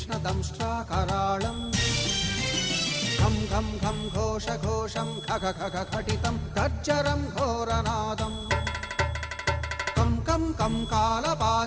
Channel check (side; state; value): both; identical; correlation 1.00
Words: घं घं घं घोषघोषं खग खग खटितं गर्जरं घोरनादम् कं कं कं